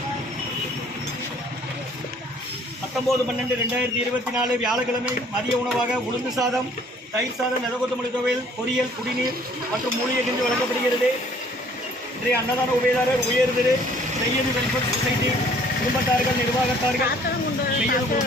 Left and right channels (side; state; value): both; normal; correlation 0.57